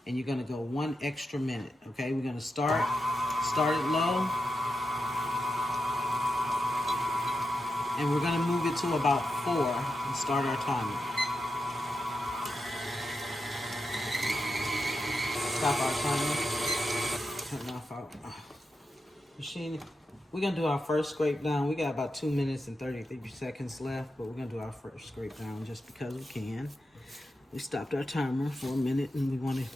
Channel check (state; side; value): normal; both; correlation 0.88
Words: and you're gonna go 1 extra minute. Okay, we're gonna start it low. And we're gonna move it to about 4 and start our timer. Stop our timer. Turn off our machine. We're gonna do our first scrape down. We got about 2 minutes and 33 seconds left, but we're gonna do our first scrape down just because we can. We stopped our timer for a minute and we wanna